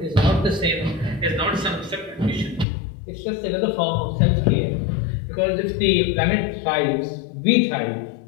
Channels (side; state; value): right; drops out; at 2.7 s